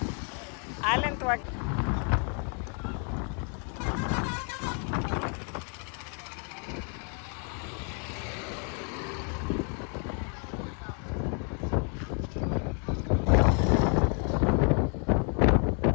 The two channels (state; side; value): quieter; right; 40.0 dB